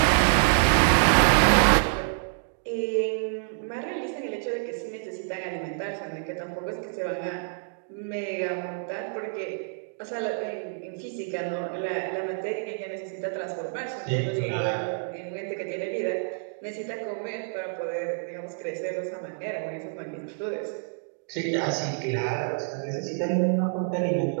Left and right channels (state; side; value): silent; left; digital silence